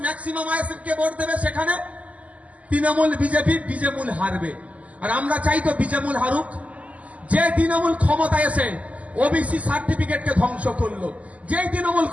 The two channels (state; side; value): late; left; 0.070 ms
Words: ম্যাক্সিমাম আইএসএফ কে ভোট দেবে সেখানে তৃণমূল বিজেমূল হারবে। আর আমরা চাই তো বিজেমূল হারুক। যে তৃণমূল ক্ষমতায় এসে ওবিসি সার্টিফিকেটকে ধ্বংস করলো, যেই তৃণমূল